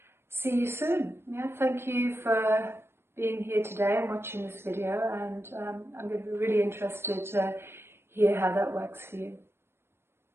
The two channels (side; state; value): left; late; 0.12 ms